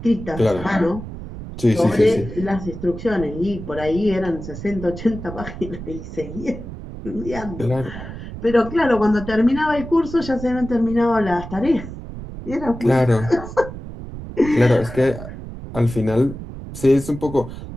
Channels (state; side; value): noise; right; rumble, 11 dB below the sound